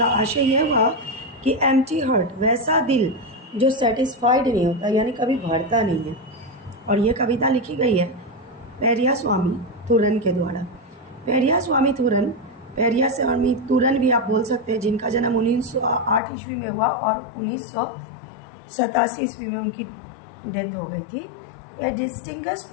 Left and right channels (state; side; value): drops out; right; at 16.2 s